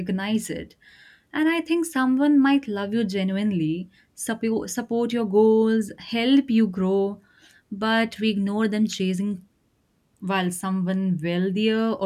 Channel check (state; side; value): identical; both; correlation 1.00